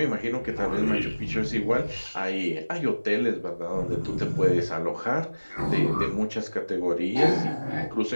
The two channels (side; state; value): both; inverted; correlation -1.00